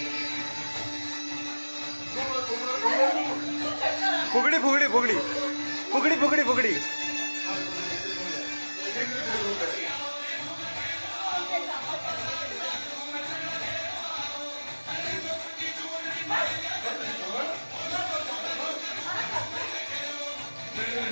फुगड़ी फुगड़ी फुगड़ी फुगड़ी फुगड़ी फुगड़ी।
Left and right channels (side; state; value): both; inverted; correlation -1.00